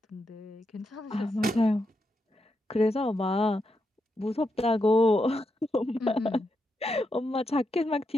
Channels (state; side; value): normal; both; correlation 0.84